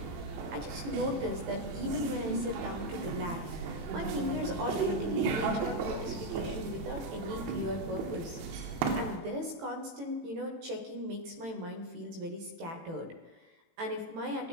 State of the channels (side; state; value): left; late; 18 ms